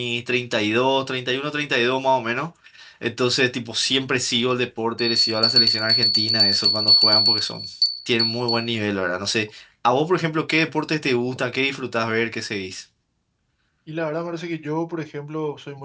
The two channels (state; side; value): identical; both; correlation 1.00